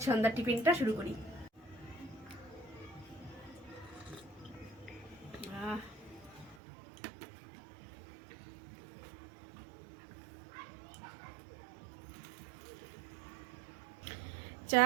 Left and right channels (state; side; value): drops out; left; at 6.6 s